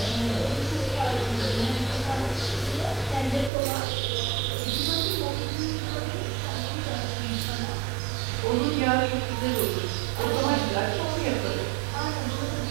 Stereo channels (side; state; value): left; drops out; at 3.5 s